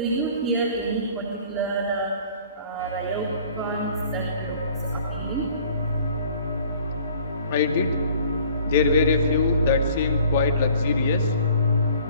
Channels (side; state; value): both; inverted; correlation -0.52